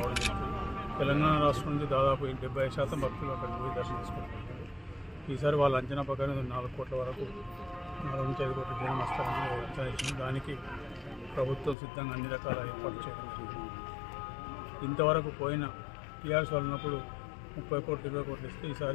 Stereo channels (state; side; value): drops out; right; at 11.8 s